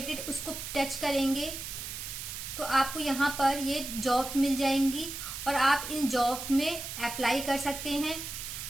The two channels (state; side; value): noise; right; hiss, 7 dB below the sound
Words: उसको टच करेंगे तो आपको यहाँ पर ये जॉब्स मिल जाएंगी और आप इन जॉब्स में अप्लाई कर सकते हैं।